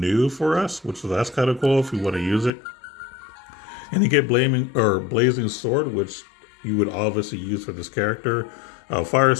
for us, which that's kind of cool if you want to use it. And you get Blazing Sword, which you would obviously use for this character. Fire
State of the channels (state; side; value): drops out; right; at 2.5 s